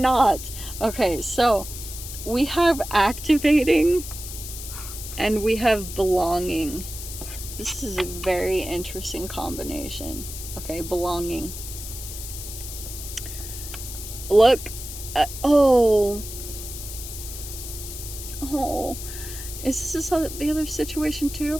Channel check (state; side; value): noise; left; hiss, 10 dB below the sound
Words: Okay, so we have activating and we have belonging. This is a very interesting combination. Okay, belonging. Look, is this the other situation